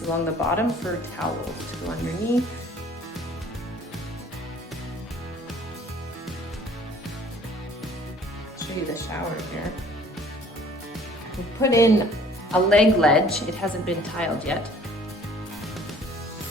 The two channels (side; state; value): both; normal; correlation 0.54